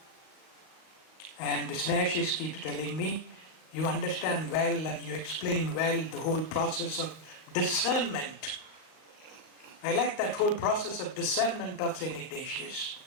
And Snehashis keeps telling me, you understand well and you explain well the whole process of discernment. I like that whole process of discernment of St. Ignatius.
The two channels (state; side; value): late; right; 38 ms